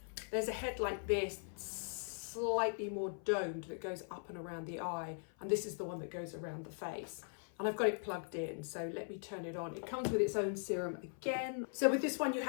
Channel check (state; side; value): silent; right; 51 dB below the other